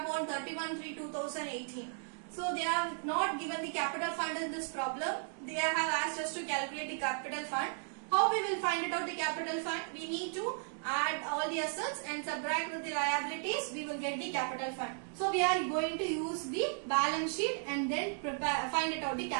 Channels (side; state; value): left; silent; 54 dB below the other